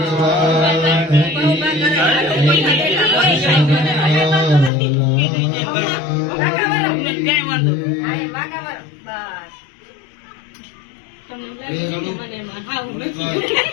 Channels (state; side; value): drops out; right; at 4.7 s